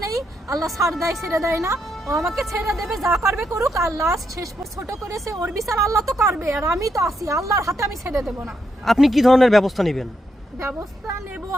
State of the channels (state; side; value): normal; both; correlation 0.80